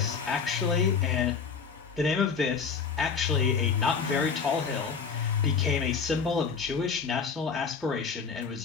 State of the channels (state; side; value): quieter; right; 5.8 dB